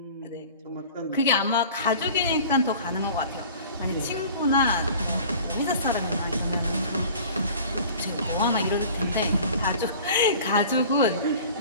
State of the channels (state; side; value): inverted; both; correlation -0.44